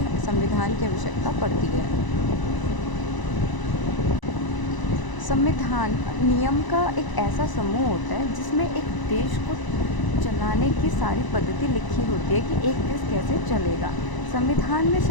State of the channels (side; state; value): right; late; 1.0 ms